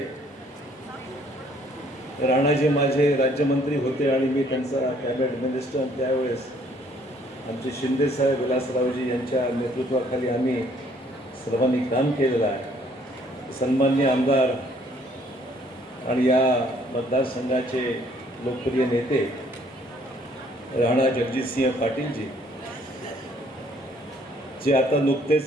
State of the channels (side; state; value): both; normal; correlation 0.62